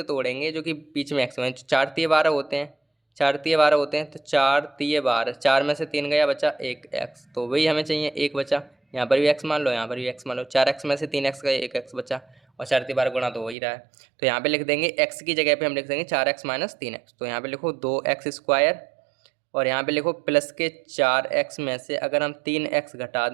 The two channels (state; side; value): drops out; left; at 13.6 s